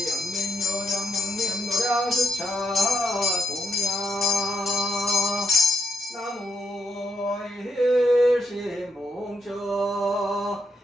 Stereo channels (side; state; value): both; normal; correlation 0.79